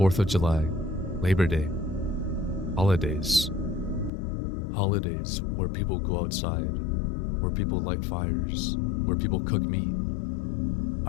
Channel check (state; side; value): drops out; right; at 4.1 s